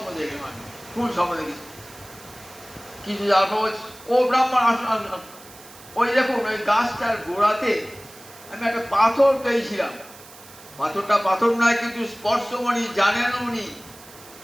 দেখে মানে, কোন স্বপ্ন দেখেছি কিছু যাওয়ার পর ও ব্রাহ্মণ আসুন আসুন আসুন, ওই দেখুন ওই গাছটার গোড়াতে আমি একটা পাথর পেয়েছিলাম। পাথরটা পাথর নয়, কিন্তু স্পর্শমণি, জানেন উনি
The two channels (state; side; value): noise; right; hiss, 20 dB below the sound